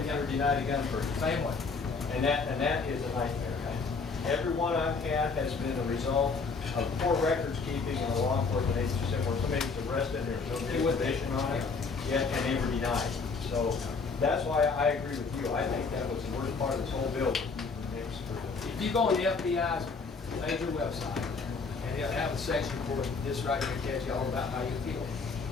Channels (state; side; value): quieter; right; 4.6 dB